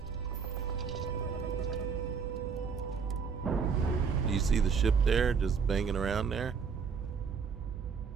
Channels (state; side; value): quieter; left; 5.9 dB